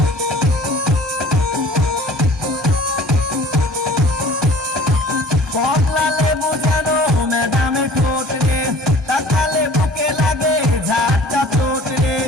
কমলা লেবু জানো ম্যাডামের ঠোঁট রে, তাকালে বুকে লাগে ঝাড়টা চোট রে,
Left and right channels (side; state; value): both; normal; correlation 0.48